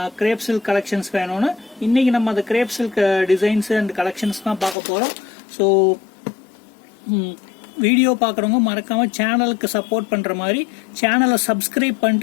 கிரேப் சில்க் கலெக்ஷன்ஸ் வேணும்னு. இன்னைக்கு நம்ம அந்த grape silk designs and collections தான் பார்க்க போறோம். ஸோ வீடியோ பார்க்குறவங்க மறக்காம சேனலுக்கு சப்போர்ட் பண்ற மாதிரி சேனலை சப்ஸ்கிரைப்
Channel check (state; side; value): drops out; right; at 4.8 s